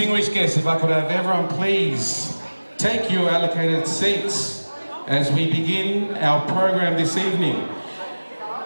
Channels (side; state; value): both; inverted; correlation -1.00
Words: guests, if I could have everyone please take your allocated seats as we begin our program this evening.